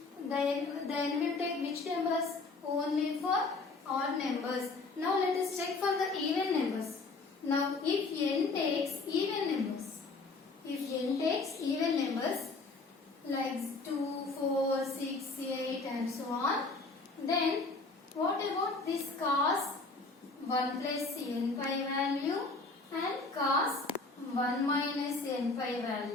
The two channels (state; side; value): quieter; right; 3.7 dB